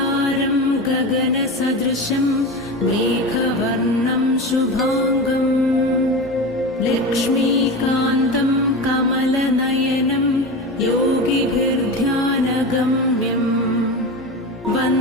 गगनसदृशं मेघवर्णं शुभांगं लक्ष्मीकान्तं कमलनयनं योगिभिर्ध्यानगम्यं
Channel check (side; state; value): both; normal; correlation 0.25